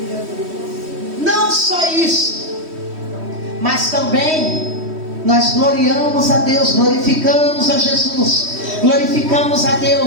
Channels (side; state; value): left; late; 3.1 ms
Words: Não só isso, mas também nós gloriamos a Deus, glorificamos a Jesus, glorificamos a